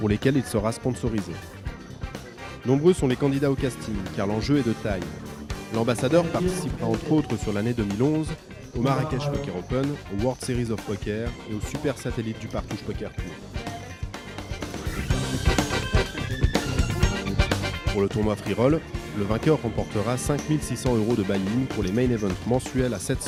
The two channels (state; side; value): identical; both; correlation 1.00